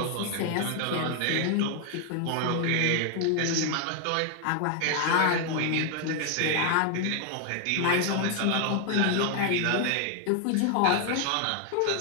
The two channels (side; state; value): both; different; correlation 0.00